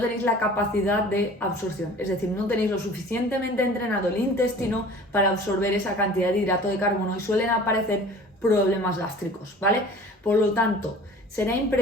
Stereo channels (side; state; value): both; normal; correlation 0.44